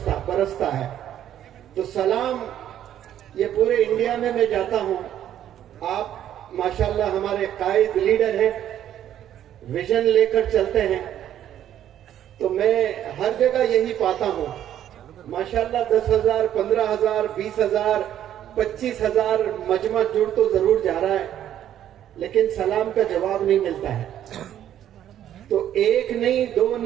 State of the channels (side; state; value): left; quieter; 11.0 dB